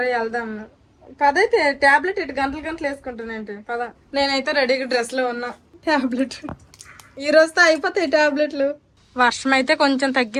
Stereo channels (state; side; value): identical; both; correlation 1.00